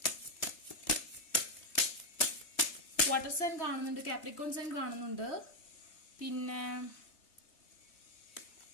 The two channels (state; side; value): late; right; 3.3 ms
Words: വാട്ടർ സൈൻ കാണുന്നുണ്ട്, കാപ്രിക്കോൺ സൈൻ കാണുന്നുണ്ട്, പിന്നെ